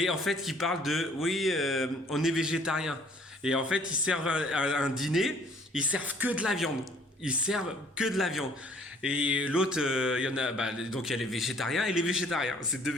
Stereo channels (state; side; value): normal; both; correlation 0.57